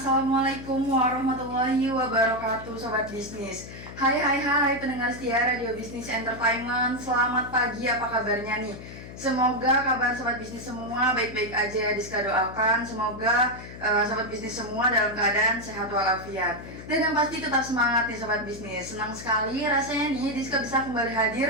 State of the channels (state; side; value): noise; left; hum, 13 dB below the sound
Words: warahmatullahi wabarakatuh, Sobat Bisnis. Hai pendengar setia Radio Bisnis Entertainment. Selamat pagi, apa kabarnya nih? Semoga kabar Sobat Bisnis semua baik-baik aja. Diska doakan semoga Sobat Bisnis semua dalam keadaan sehat walafiat. Dan yang pasti tetap semangat nih Sobat Bisnis. Senang sekali rasanya nih Diska bisa kembali